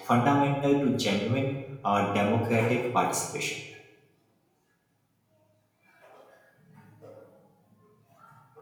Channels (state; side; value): identical; both; correlation 1.00